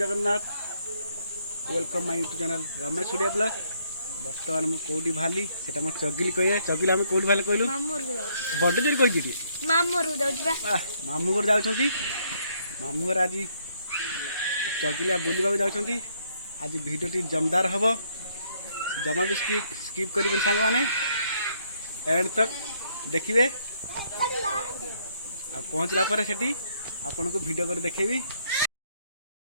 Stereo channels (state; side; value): inverted; both; correlation -0.70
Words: Welcome my YouTube channel Ramesh Surya blog. बर्तमान मुझे कौटी बाहरी से मोर चगिली कहे चगिली आम कौटी बाहर कहलु बड़ जोर कही मामू घर जाऊँच मामू घर आज चगिलिया बुलवा जाऊँच। आज भिडियोटी जमदार हम जमा भी स्किप करेंगे सांग मैंने एंड तक देखिए। आ पहुँचला पर सेठी आपन को वीडियो कर देखेबी।